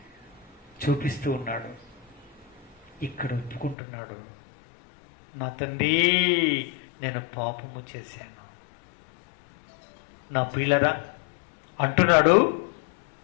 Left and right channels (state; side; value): drops out; right; at 3.8 s